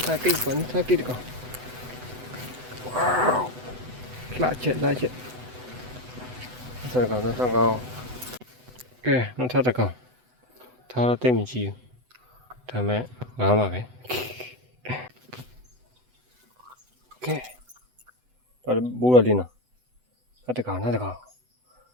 ဒါကိတ်ကောင်းစားကိတ်တကောင်ဝေါလာချက်ဆက်ကောင်ကဲနောက်ထပ်တကောင်ထားတော့တိတ်မကြည့်ဘူးဒါမဲ့ငားပါပဲကဲတော့ဘူရလေးနော်နောက်တကောင်ဒါ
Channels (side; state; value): left; late; 8.0 ms